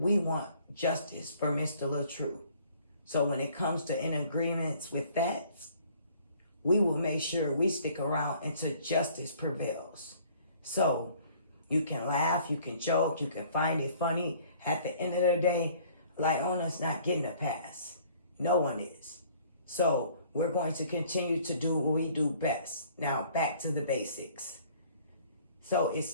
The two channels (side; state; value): both; inverted; correlation -0.56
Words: want justice for Mr. LaTruth. So when it comes to in agreements with that, we will make sure we stick around until justice prevails. So you can laugh, you can joke, you can find it funny. At the end of the day, Lieonya's not getting a pass. No one is. So we're going to continue to do what we do best. Now back to the basics. So it